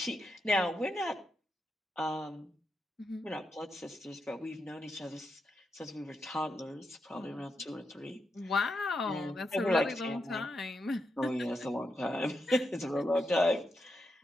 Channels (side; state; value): both; normal; correlation 0.84